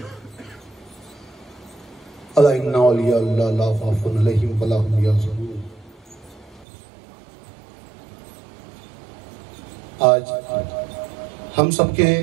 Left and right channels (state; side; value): drops out; left; at 6.7 s